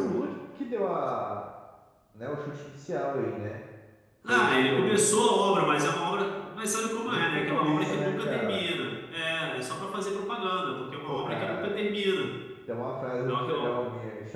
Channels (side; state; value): both; identical; correlation 1.00